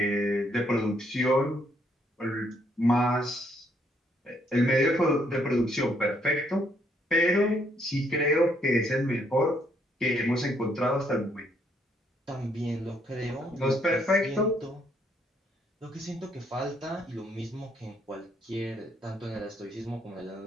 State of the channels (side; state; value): both; normal; correlation 0.70